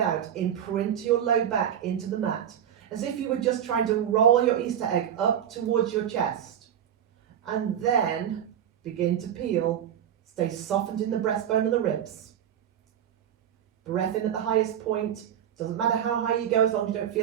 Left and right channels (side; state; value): left; quieter; 9.6 dB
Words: imprint your low back into the mat, as if you were just trying to roll your Easter egg up towards your chest. And then begin to peel. Stay softened in the breastbone and the ribs. Breath in at the highest point. Doesn't matter how high you go, as long as you don't